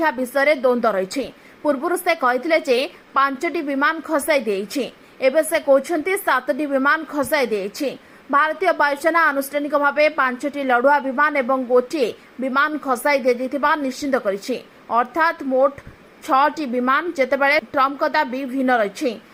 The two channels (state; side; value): identical; both; correlation 1.00